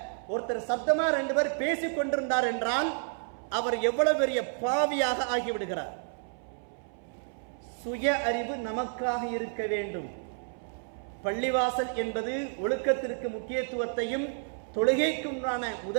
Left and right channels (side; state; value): left; silent; 58 dB below the other